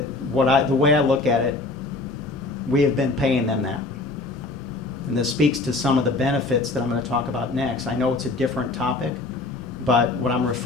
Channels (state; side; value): quieter; right; 3.4 dB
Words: way I look at it, we have been paying them that. And this speaks to some of the benefits that I'm going to talk about next. I know it's a different topic, but what I'm